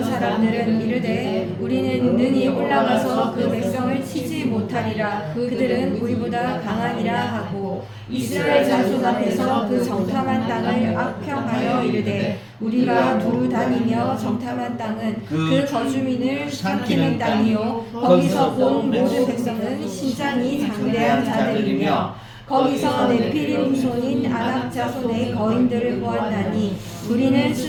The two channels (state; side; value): identical; both; correlation 1.00